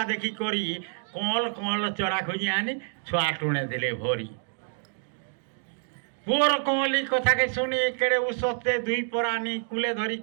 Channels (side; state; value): left; silent; 60 dB below the other